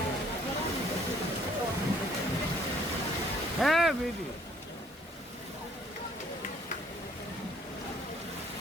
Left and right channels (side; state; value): both; normal; correlation 0.61